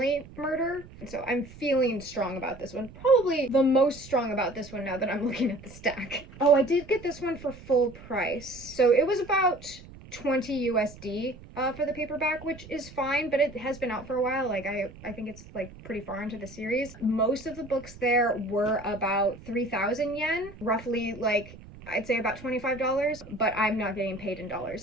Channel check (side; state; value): right; noise; rumble, 18 dB below the sound